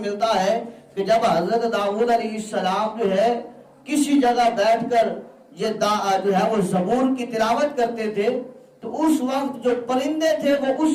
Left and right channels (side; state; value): both; identical; correlation 1.00